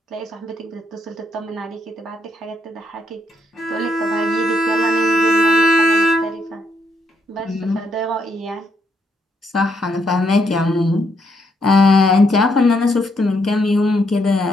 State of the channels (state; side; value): normal; both; correlation 0.76